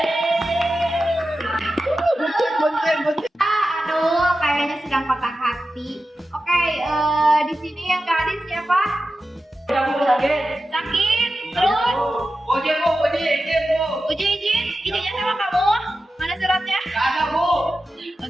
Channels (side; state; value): both; normal; correlation 0.92